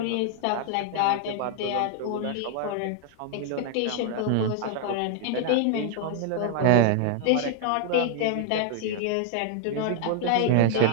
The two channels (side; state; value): both; different; correlation 0.00